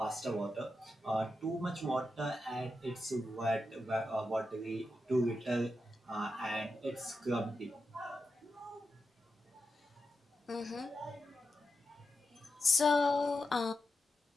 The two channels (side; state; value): both; normal; correlation 0.88